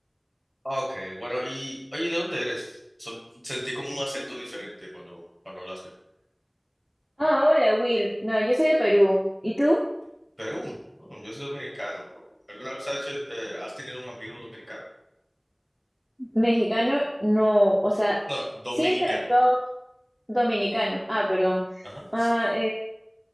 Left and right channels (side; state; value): both; identical; correlation 1.00